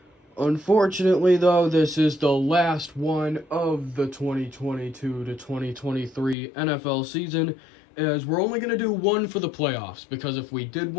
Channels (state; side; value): drops out; right; at 6.4 s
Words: Unfortunately, though, this is the last one of the 2022 to 2023 NFL season, as we're only going to do one for the playoffs, because if we did